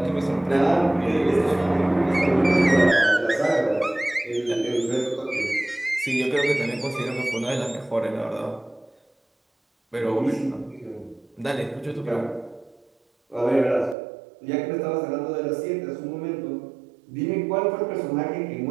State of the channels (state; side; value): drops out; left; at 14.0 s